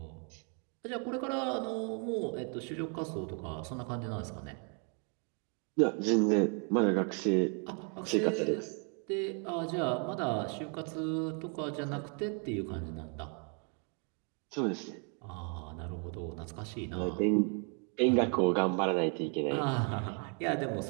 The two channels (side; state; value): left; quieter; 39.4 dB